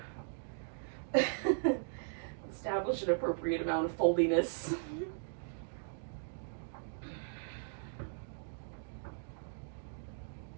Establish an appropriate amount of foldiness.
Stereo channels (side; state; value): left; silent; digital silence